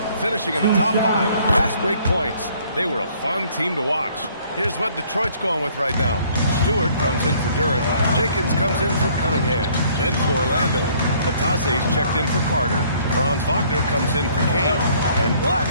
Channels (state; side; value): inverted; both; correlation -0.60